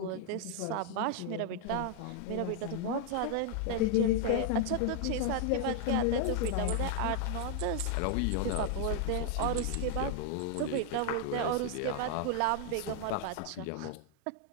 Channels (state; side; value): different; both; correlation 0.00